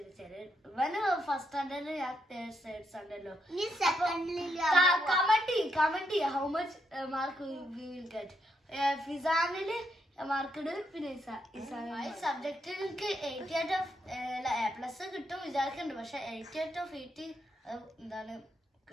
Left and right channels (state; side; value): normal; both; correlation 0.79